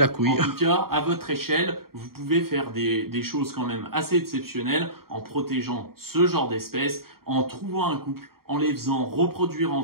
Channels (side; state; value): left; late; 0.93 ms